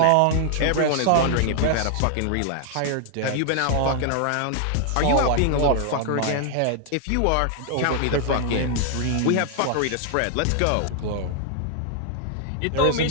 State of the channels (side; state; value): both; different; correlation 0.00